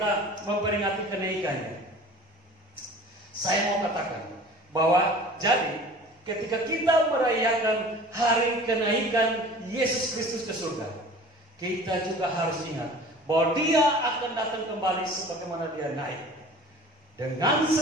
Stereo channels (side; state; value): both; normal; correlation 0.43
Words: memperingati kenaikannya. Saya mau katakan bahwa jadi ketika kita merayakan hari kenaikan Yesus Kristus ke surga, kita juga harus ingat bahwa Dia akan datang kembali sebagaimana Dia naik. Dengan